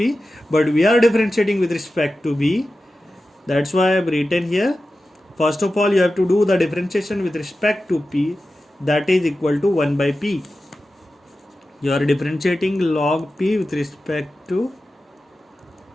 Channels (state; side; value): normal; both; correlation 0.93